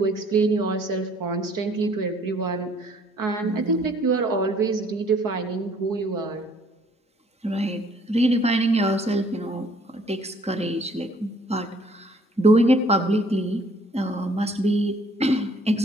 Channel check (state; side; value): normal; both; correlation 0.60